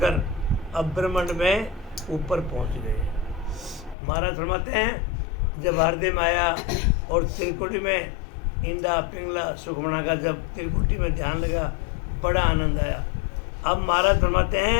अब ब्रह्मांड में ऊपर पहुंच गए। महाराज फरमाते हैं जब हृदय में आया और त्रिकुटी में इंदा पिंगला सुखमणा का जब त्रिकुटी में ध्यान लगा, बड़ा आनंद आया। अब महाराज फरमाते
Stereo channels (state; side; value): drops out; right; at 4.0 s